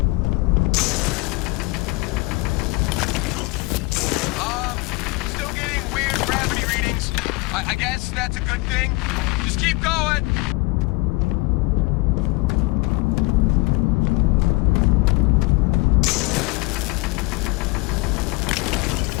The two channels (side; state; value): right; quieter; 24.3 dB